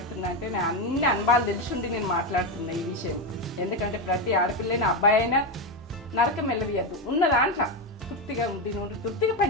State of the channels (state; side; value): normal; both; correlation 0.11